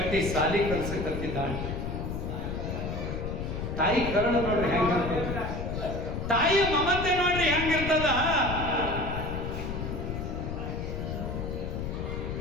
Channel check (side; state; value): left; noise; rumble, 4 dB below the sound